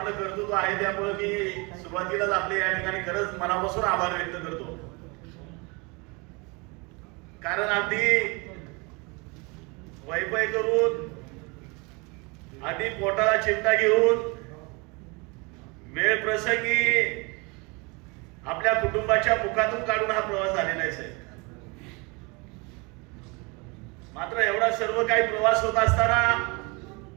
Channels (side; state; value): left; quieter; 28.6 dB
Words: कर्तृत्व आहे, त्यामुळे मी सुरुवातीलाच आपले या ठिकाणी खरंच मनापासून आभार व्यक्त करतो. कारण अगदी वैपय करून, आधी पोटाला चिमटा घेऊन, वेळ प्रसंगी आपल्या कुटुंबाच्या मुखातून काढून हा प्रवास झालेला आहे साहेब. मात्र एवढा सर्व काही प्रवास होत असताना